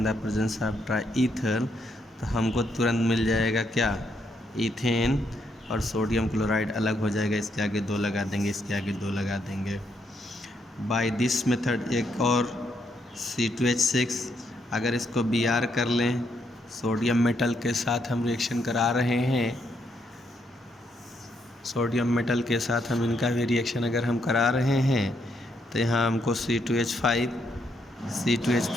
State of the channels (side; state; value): both; normal; correlation 0.76